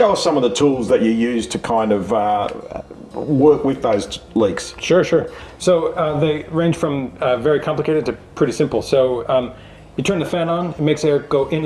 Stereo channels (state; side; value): identical; both; correlation 1.00